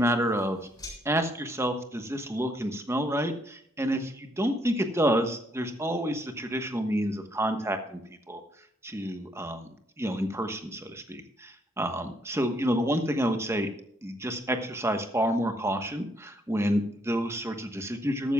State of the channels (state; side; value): normal; both; correlation 0.71